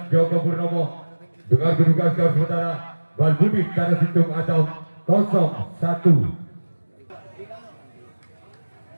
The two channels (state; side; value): inverted; both; correlation -1.00